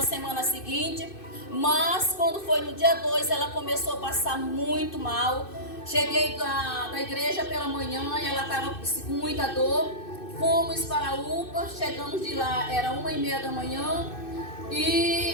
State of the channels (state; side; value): late; right; 2.6 ms